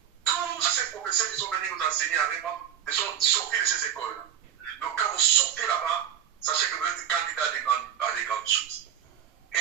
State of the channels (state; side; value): quieter; left; 9.6 dB